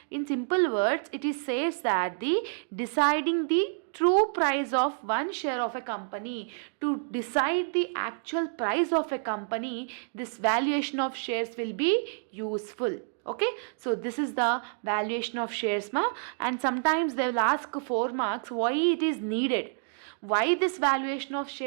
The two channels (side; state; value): left; silent; digital silence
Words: in simple words, it is says that the deciding the true price of one share of a company, to decide the actual price of a company, this valuation of shares will be useful. Okay, so this is the valuation of shares and sometimes they will ask 4 marks why it is needed. Why this valuation of